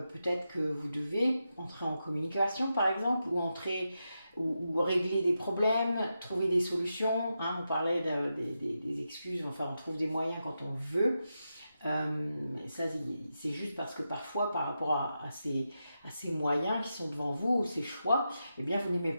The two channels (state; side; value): inverted; both; correlation -0.88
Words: peut-être que vous devez entrer en communication par exemple, ou régler des problèmes, trouver des solutions, hein, on parlait des excuses, enfin on trouve des moyens quand on veut. Ça c'est juste parce que parfois par rapport à ces moyens qui sont devant vous, ces choix, eh bien vous n'aimez